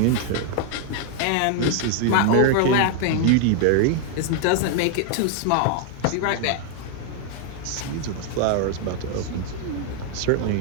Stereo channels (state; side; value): different; both; correlation 0.00